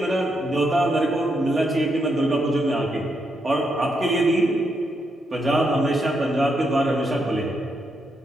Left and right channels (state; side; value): normal; both; correlation 0.80